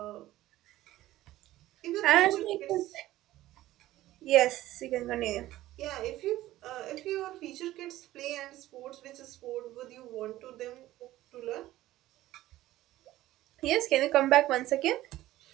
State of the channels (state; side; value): quieter; left; 15.5 dB